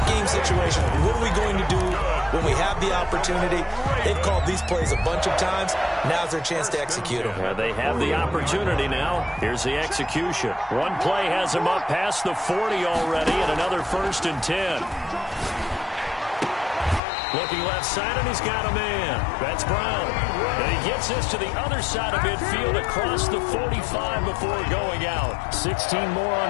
game situation. What are we going to do when we have the opportunity? They've called these plays a bunch of times. Now's their chance to execute them. Yeah, they have the opportunity now. Here's the execution. One play has him up past the 40 already, and another 1st and 10. Looking left side, and he's got a man. That's Brown. And he gets this to the other side of midfield across the 45 before going out. 16 more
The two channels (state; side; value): drops out; right; at 17.0 s